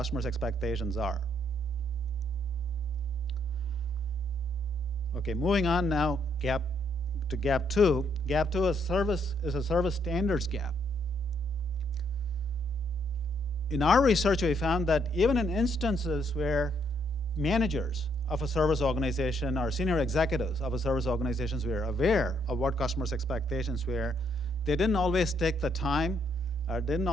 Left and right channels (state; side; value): normal; both; correlation 0.72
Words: expectations are. Okay, moving on now to gap 2. Gap 2 is a service standards gap. In our research, we found that even in instances where managers of a service organization or senior executives of a service organizations were aware of what customers' expectations were, they didn't always take the time or didn't